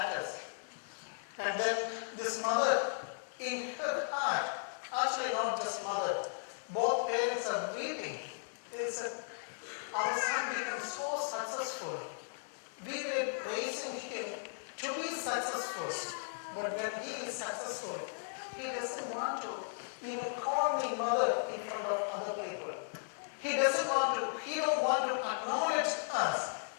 And then this mother, in her heart, actually not just mother, both parents are weeping. They said, our son becomes so successful. We were raising him to be successful. But when he is successful, he doesn't want to even call me mother in front of other people. He don't want to acknowledge us.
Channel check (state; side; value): silent; right; 54 dB below the other